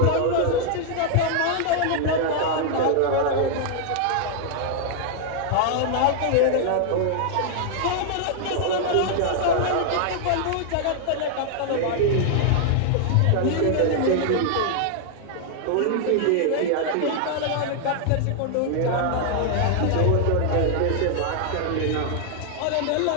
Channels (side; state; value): both; different; correlation 0.00